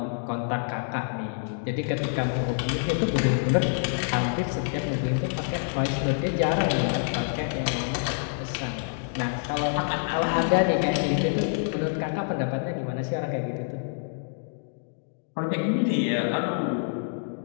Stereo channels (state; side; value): silent; right; digital silence